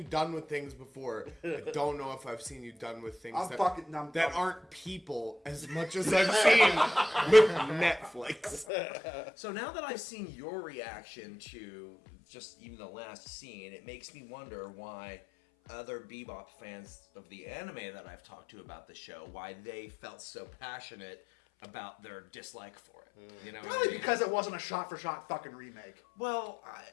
done with things before. I don't know if I've seen you done with things that aren't people as much as I've seen with Netflix. So now that I've seen your reaction to just even the last scene, it makes me wonder why other Bebop fans of the anime that I've talked to about the show, why they felt so passionate about their dislike for it. You know, Probably because it wasn't a shot-for-shot fucking remake. Well,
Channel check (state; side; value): drops out; right; at 8.7 s